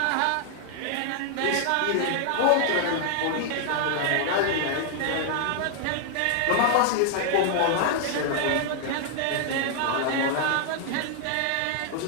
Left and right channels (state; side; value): different; both; correlation 0.00